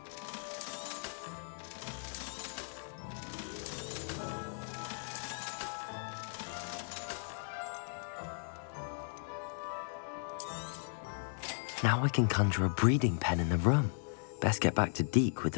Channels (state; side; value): silent; right; digital silence